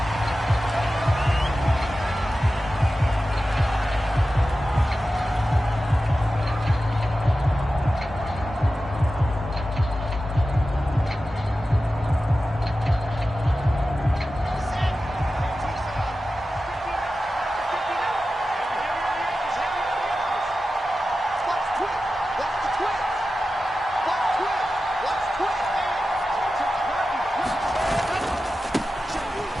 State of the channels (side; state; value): both; normal; correlation 0.93